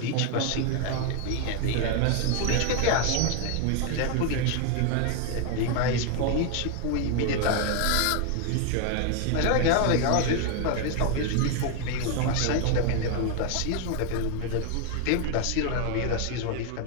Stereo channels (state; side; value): different; both; correlation 0.01